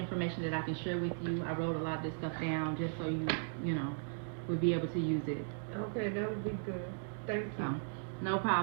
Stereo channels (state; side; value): silent; left; digital silence